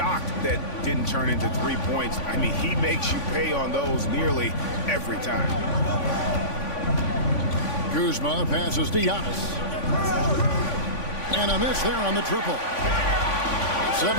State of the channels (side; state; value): right; late; 3.5 ms